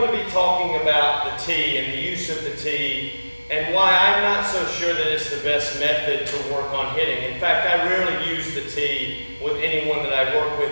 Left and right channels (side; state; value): both; inverted; correlation -1.00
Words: to be talking about the tee and the use of the tee and why I'm not so sure that it's the best method to work on hitting. In fact, I rarely use the tee with anyone that I work